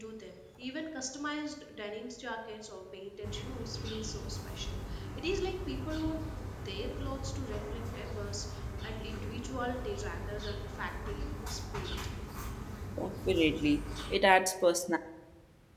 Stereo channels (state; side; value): identical; both; correlation 1.00